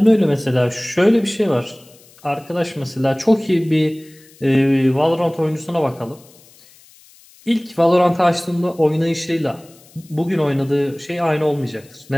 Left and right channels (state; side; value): noise; left; hiss, 26 dB below the sound